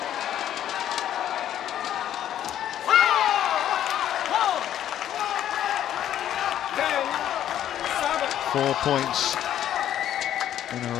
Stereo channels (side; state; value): right; quieter; 11.1 dB